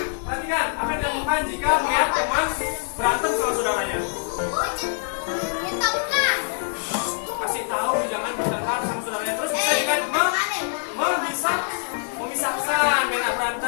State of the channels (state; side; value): silent; right; digital silence